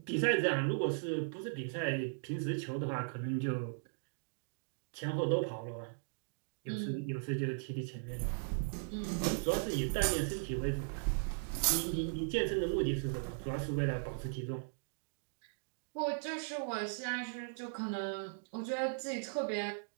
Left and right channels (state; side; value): silent; left; digital silence